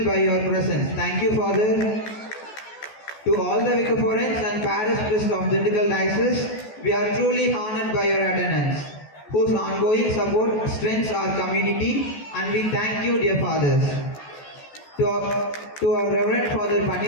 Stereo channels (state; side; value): late; right; 14 ms